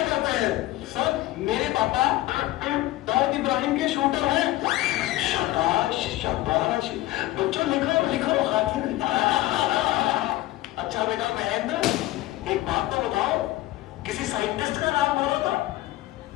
करते हैं? सर मेरे पापा दाऊद इब्राहिम के शूटर हैं। शाबाश शाबाश। बच्चों लिखो लिखो हाथी। अच्छा बेटा महेंद्र एक बात तो बताओ, किसी साइंटिस्ट का नाम बोलो तो।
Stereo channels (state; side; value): quieter; right; 16.9 dB